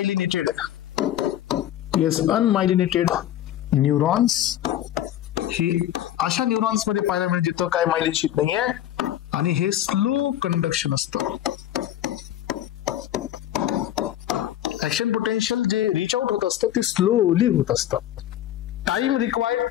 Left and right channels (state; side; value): quieter; right; 12.0 dB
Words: neurons. हे अशा न्यूरॉन्स मध्ये पाहायला मिळेल जिथं काय मायलिन शीथ नाहीये. आणि हे स्लो कंडक्शन असतं. ऍक्शन पोटेन्शियल जे रिच आउट होत असतं ते स्लोली होत असतं. Time required